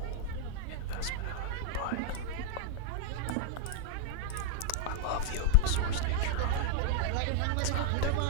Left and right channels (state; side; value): different; both; correlation -0.01